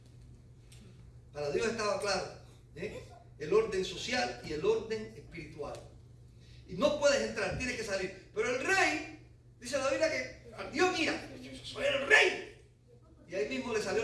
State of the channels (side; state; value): both; identical; correlation 1.00